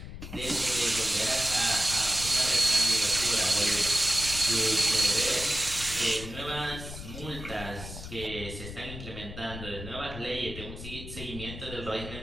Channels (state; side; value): noise; left; rumble, 10 dB below the sound